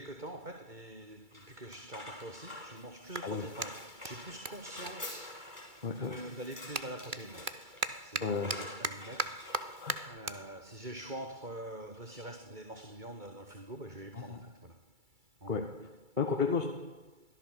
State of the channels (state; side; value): late; left; 2.3 ms